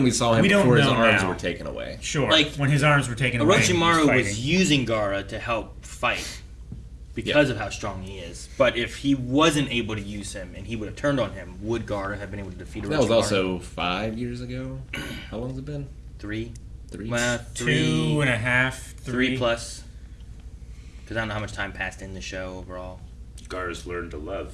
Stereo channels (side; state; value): both; identical; correlation 1.00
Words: we saw him we don't before his know arms now. were taken away. Sure. Like, when his arms were taken away. and he Orochimaru fighting. was using Gaara to help fight because of how strong he is. But if he wasn't able to use him and he would have turned on him, would Gaara have been able to defeat Orochimaru? That was also 5 years ago. How long has it been? 3. 3? Well, 2.5, 3 plus. Because I don't know how much time passed in the show overall. Gaara's learned to love.